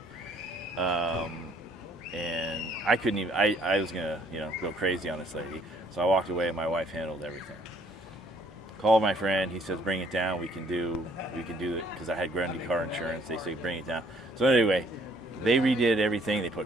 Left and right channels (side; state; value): both; normal; correlation 0.63